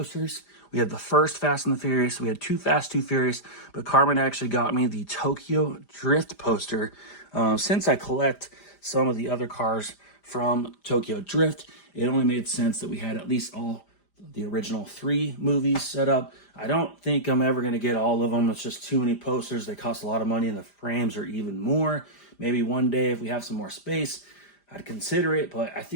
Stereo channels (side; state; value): right; late; 5.0 ms